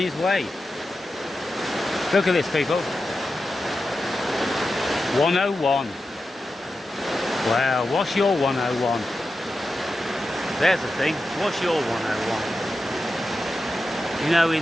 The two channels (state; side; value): normal; both; correlation 0.91